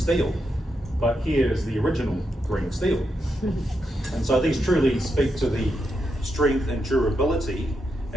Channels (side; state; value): both; normal; correlation 0.84